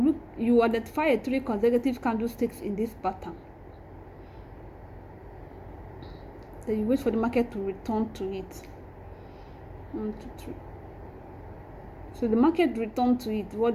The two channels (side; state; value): both; identical; correlation 1.00